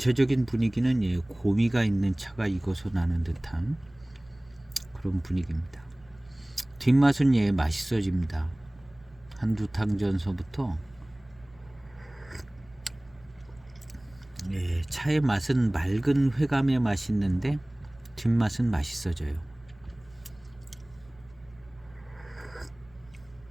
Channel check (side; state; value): right; noise; hum, 28 dB below the sound